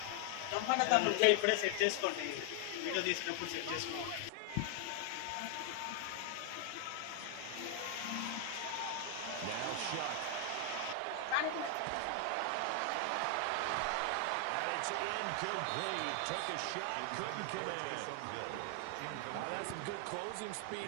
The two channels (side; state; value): both; different; correlation 0.00